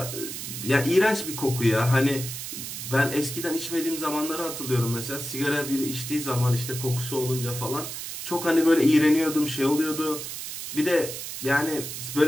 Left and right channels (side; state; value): right; noise; hiss, 7 dB below the sound